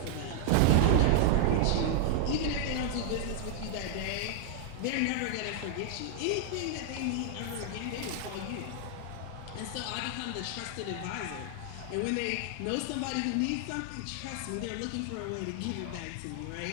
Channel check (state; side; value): different; both; correlation 0.00